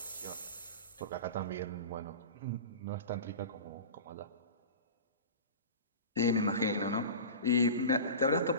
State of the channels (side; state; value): both; inverted; correlation -0.32